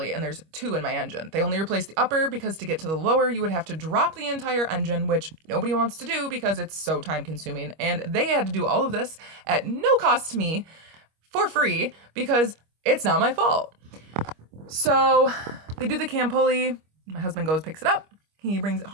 and there's two in my engine. They only replaced the upper because to get to the lower, you would have to drop the entire engine, which nobody wants to do because it's so time consuming. And they had to do all of this at no cost to me for free because it's not my fault. So they do the cam pulley. My husband goes, picks it up. He brings it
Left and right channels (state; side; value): late; left; 25 ms